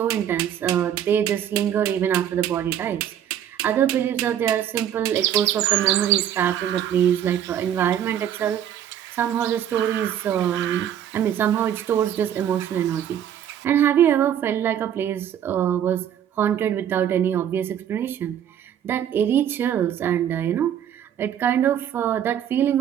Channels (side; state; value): left; quieter; 10.0 dB